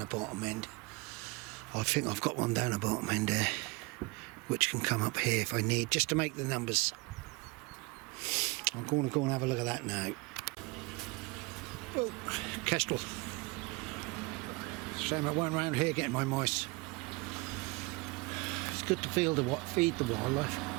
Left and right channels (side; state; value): left; quieter; 25.9 dB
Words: bottom end. I think I've got one down the bottom end there which can come up here if I need, just to make the numbers. I'm going to go and have a look at that now. Oh, Kestrel. Shame I weren't around here getting my mice. It's good to feed the wildlife.